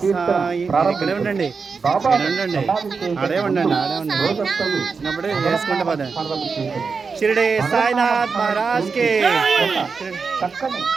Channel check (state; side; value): quieter; left; 5.0 dB